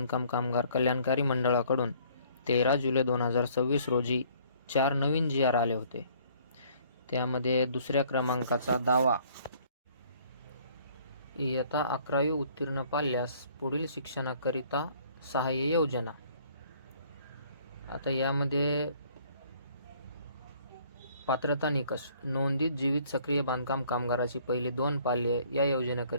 कामगार कल्याणकारी मंडळाकडून 13 जुलै 2026 रोजी 4 नवीन GR आले होते. त्यामध्ये दुसऱ्या क्रमांकाचा दावा, इयत्ता 11वी उत्तीर्ण पाल्यास पुढील शिक्षणाकरिता सहाय्य योजना. आता यामध्ये पात्रता निकष: नोंदित जीवित सक्रिय बांधकाम कामगाराची पहिली 2 पाल्ये या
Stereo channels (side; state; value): both; inverted; correlation -0.59